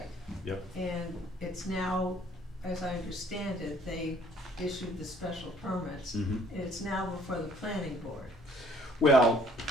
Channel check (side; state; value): both; normal; correlation 0.59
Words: Yep. And it's now, as I understand it, they issued the special permits. Mhm. And it's now before the planning board, Well,